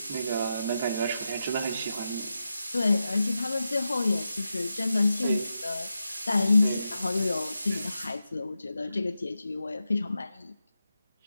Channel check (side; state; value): both; inverted; correlation -0.89